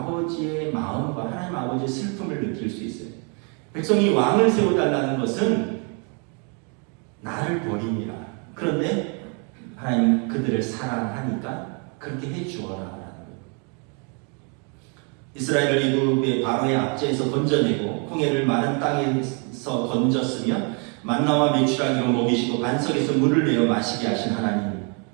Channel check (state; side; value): quieter; left; 37.0 dB